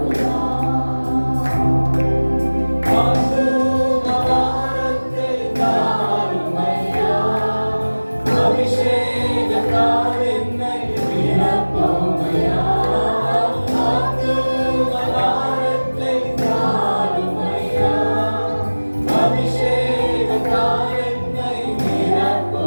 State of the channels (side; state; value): both; inverted; correlation -1.00